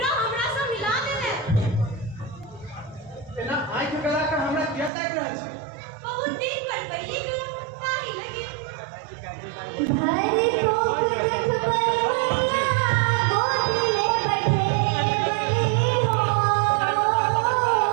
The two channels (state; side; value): drops out; left; at 4.9 s